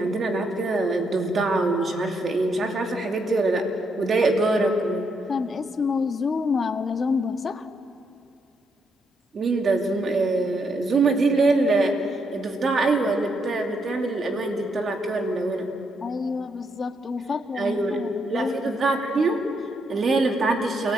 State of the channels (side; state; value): both; normal; correlation 0.77